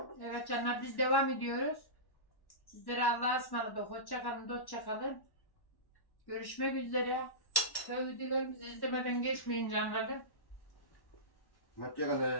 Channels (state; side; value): late; right; 1.1 ms